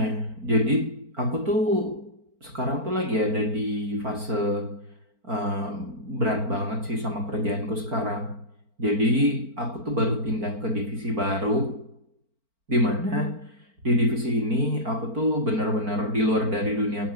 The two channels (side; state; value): left; late; 4.4 ms